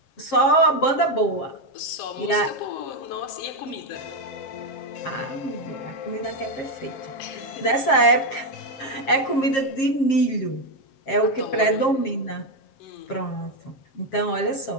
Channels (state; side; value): late; right; 7.4 ms